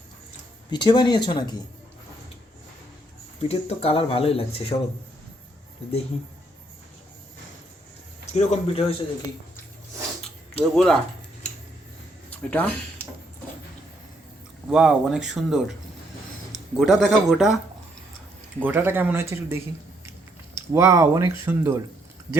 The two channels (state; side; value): normal; both; correlation 0.72